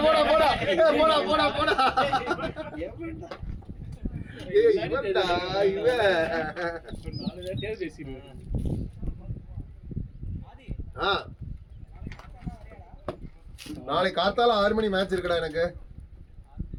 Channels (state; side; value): identical; both; correlation 1.00